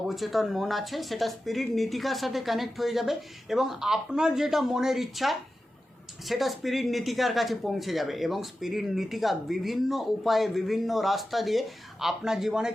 মন আছে সেটা স্পিরিট নীতিকার সাথে কানেক্ট হয়ে যাবে এবং আপনার যেটা মনের ইচ্ছা সেটা স্পিরিট নীতিকার কাছে পৌঁছে যাবে এবং স্পিরিট নীতিকা বিভিন্ন উপায়ে, বিভিন্ন রাস্তা দিয়ে আপনার জীবনে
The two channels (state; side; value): normal; both; correlation 0.93